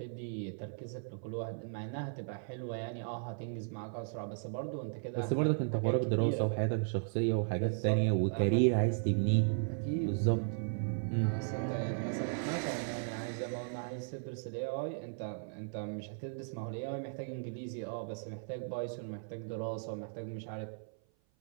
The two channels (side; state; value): left; silent; 54 dB below the other